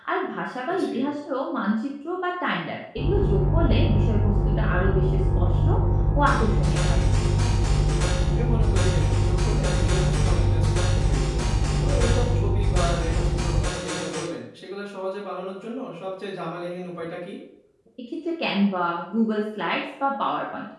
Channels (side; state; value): both; identical; correlation 1.00